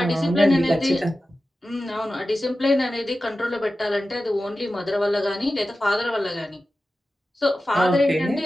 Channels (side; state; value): both; normal; correlation 0.94